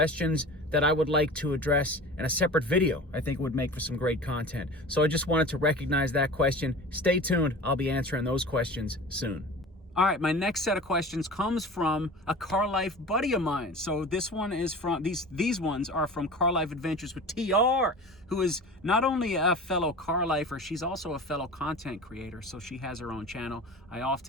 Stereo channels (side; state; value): both; normal; correlation 0.36